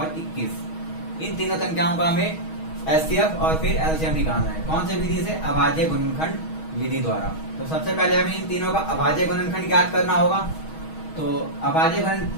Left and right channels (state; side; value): late; right; 6.3 ms